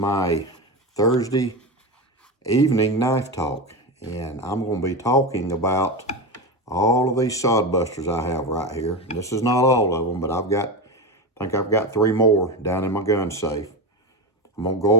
Thursday evening knife talk, and I'm going to be talking about all of these Sodbusters I have right here. And this is not all of them, but I think I've got 3 more down in my gun safe. I'm going to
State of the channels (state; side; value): normal; both; correlation 0.19